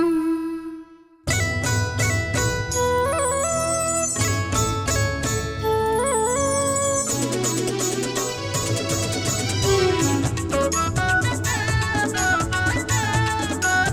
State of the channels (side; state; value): both; identical; correlation 1.00